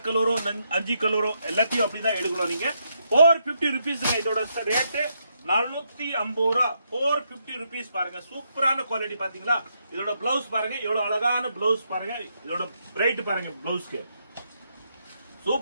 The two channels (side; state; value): both; inverted; correlation -0.78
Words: கலரோ 5 கலரோ எல்லாத்தையும் அப்படிதான் எடுக்கணும் நீங்க. 450 rupees இதோட ரேட்டு 450 ரூபாய். 450 rupees பாருங்க. சூப்பரான குவாலிட்டி பாத்தீங்களா? இதோட பிளவுஸ் பாருங்க, எவ்வளவு அழகான பிளவுஸ் பாருங்க. இதோட பிரைட் பாருங்க பிளவுஸ்க்கு.